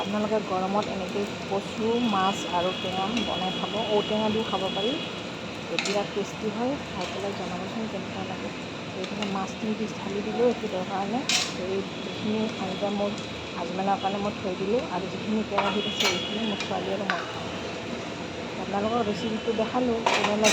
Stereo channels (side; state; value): both; identical; correlation 1.00